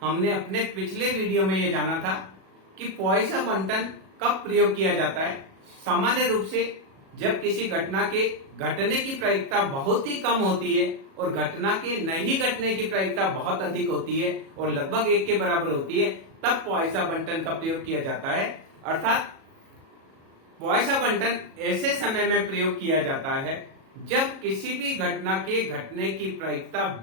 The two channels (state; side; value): late; left; 37 ms